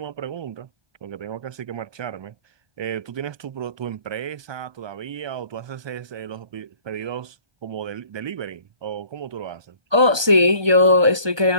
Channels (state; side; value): late; left; 1.2 ms